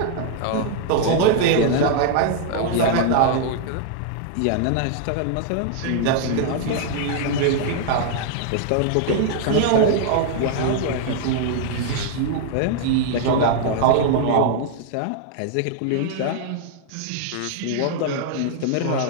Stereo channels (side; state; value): both; different; correlation 0.00